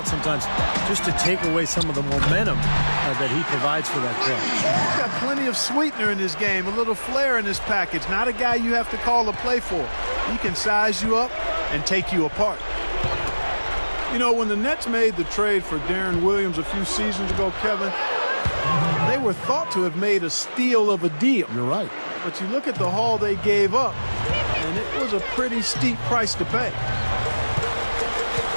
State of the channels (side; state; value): both; inverted; correlation -1.00